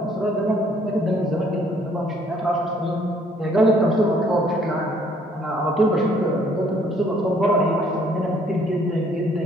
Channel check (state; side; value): normal; both; correlation 0.63